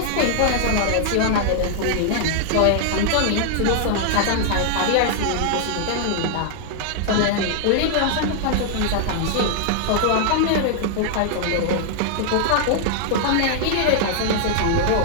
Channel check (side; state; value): both; different; correlation -0.01